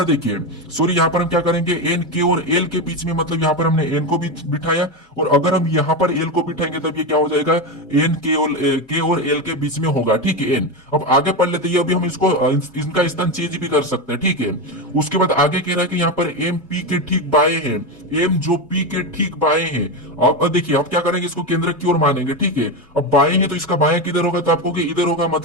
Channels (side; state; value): both; normal; correlation 0.14